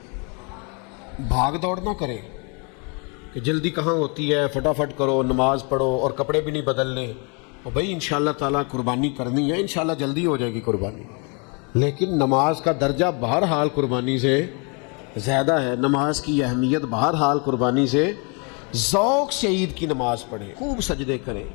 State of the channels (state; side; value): quieter; right; 34.3 dB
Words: بھاگ دوڑ نہ کریں کہ جلدی کہاں ہوتی ہے، فٹافٹ کرو، نماز پڑھو اور کپڑے بھی نہیں بدلنے، اور بھائی انشاءاللہ تعالیٰ قربانی کرنی ہے، انشاءاللہ جلدی ہو جائے گی قربانی، لیکن نماز کا درجہ بہرحال قربانی سے زیادہ ہے، نماز کی اہمیت بہرحال قربانی سے۔ ذوق سے عید کی نماز پڑھیں، خوب سجدے کریں،